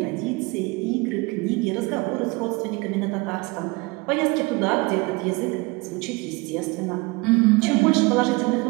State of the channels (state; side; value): quieter; left; 25.0 dB